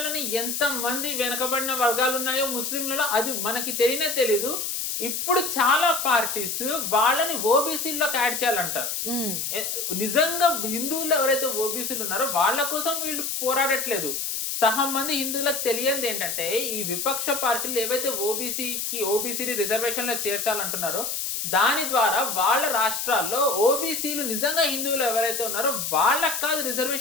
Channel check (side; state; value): left; noise; hiss, 2 dB below the sound